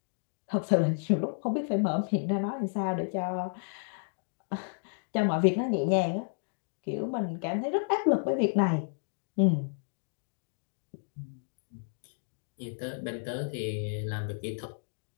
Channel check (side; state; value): right; silent; digital silence